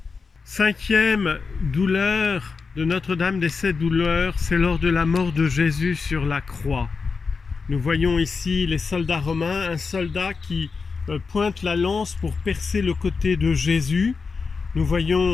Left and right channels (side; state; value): right; quieter; 4.8 dB